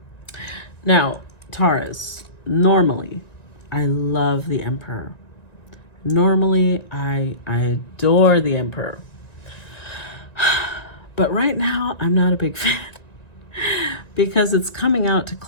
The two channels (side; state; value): right; late; 1.9 ms